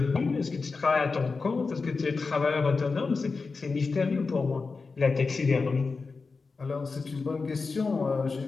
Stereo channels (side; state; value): right; quieter; 4.3 dB